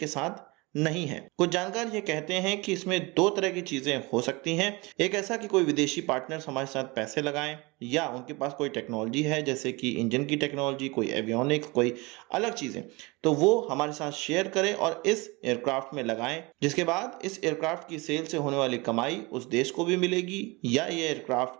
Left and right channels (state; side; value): quieter; left; 25.0 dB